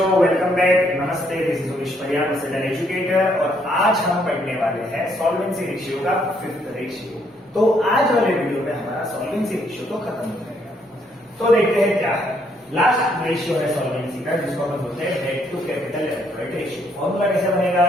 welcome back. नमस्ते, this is Umesh Pariyar, an educator. और आज हम पढ़ने वाले हैं सॉल्वेंसी रेशियो का फिफ्थ रेशियो। तो आज वाले वीडियो में हमारा सॉल्वेंसी रेशियो तो खत्म हो जाएगा। तो देखते हैं क्या है। लास्ट रेशियो है सॉल्वेंसी का, जिसको हम बोलते हैं debt to capital employed ratio. Formula कैसे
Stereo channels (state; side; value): normal; both; correlation 0.70